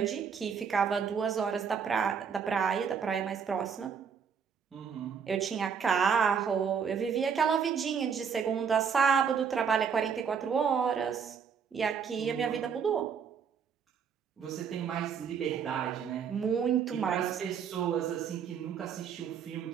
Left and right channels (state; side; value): quieter; left; 6.8 dB